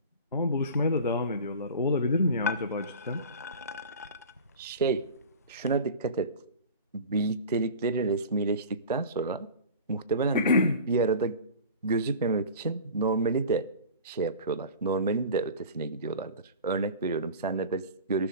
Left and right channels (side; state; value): both; inverted; correlation -0.37